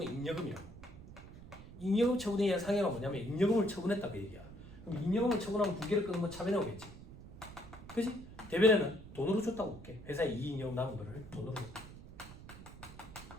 잉여금이라고. 잉여금 처분에 의한 상해가 뭐냐면 잉여금을 처분했다 그 얘기야. 그럼 잉여금을 처분하면 부계를 끊으면 차변에 오겠지. 그지? 대변에는 돈으로 줬다고 볼게. 회사에 이익잉여금 남은 거를 돈으로 줬다.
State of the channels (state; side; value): noise; right; rumble, 16 dB below the sound